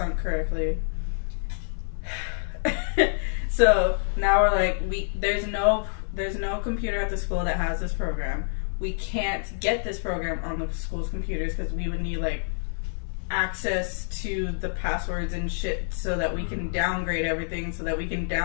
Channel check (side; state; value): right; silent; 60 dB below the other